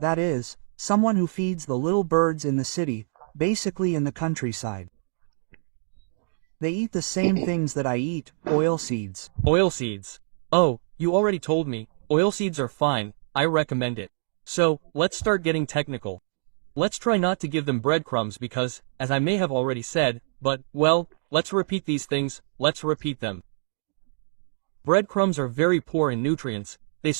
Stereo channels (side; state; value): left; silent; digital silence